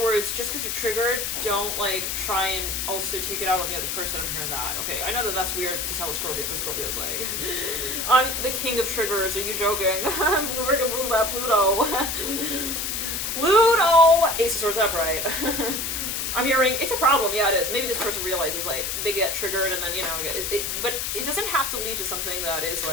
words, just because you're triggered, don't, like, try and also take it out on the other person. I'm hearing that. Okay, I know that that's weird to tell a Scorpio, but Scorpio's like, I'm the king of triggers. Are you joking? I'm Pluto. Pluto! Ace of Swords upright. I'm hearing, it's a problem. Yeah, it is. Maybe this person realizes, like, they get triggered and then, you know, but it doesn't have to lead to something that is,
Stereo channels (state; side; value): noise; left; hiss, 2 dB below the sound